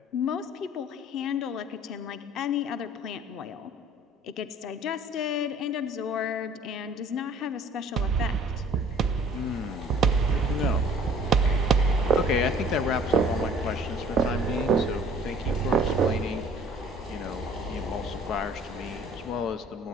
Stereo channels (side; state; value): both; normal; correlation 0.52